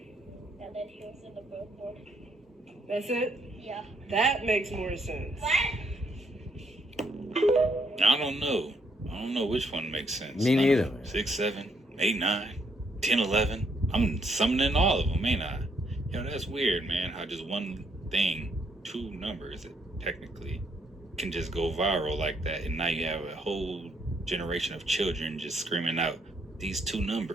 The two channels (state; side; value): normal; both; correlation 0.72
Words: And then he was in the billboard. That's it? Yeah. That makes more sense. I don't know. I don't know which one makes sense. Me neither. 6, 7, 8, 9, 10, 11. I'm summoning all of them, ain't I? Yo, that's weird, man. How just one thing, 2 numbers, technically, can just go viral like that. And now you have a whole generation of children just screaming out these 2